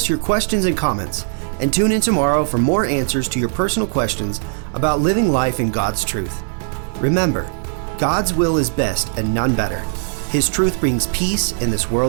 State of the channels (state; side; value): silent; left; digital silence